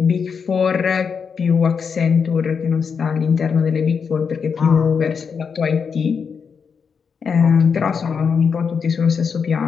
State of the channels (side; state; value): right; quieter; 6.1 dB